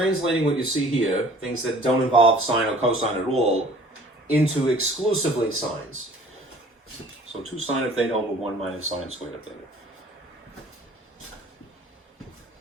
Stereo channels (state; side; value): normal; both; correlation 0.51